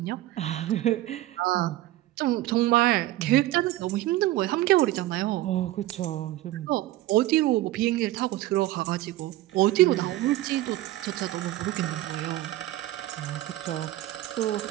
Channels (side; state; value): left; quieter; 15.8 dB